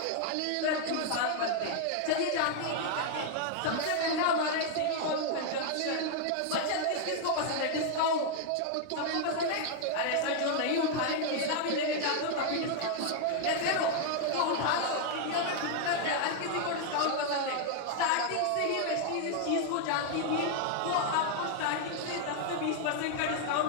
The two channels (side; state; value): both; different; correlation 0.00